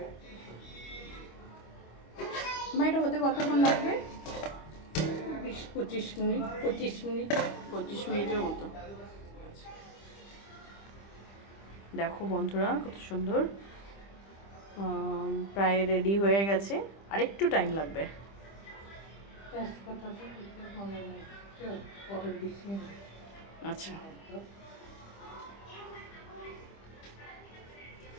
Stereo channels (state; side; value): late; right; 25 ms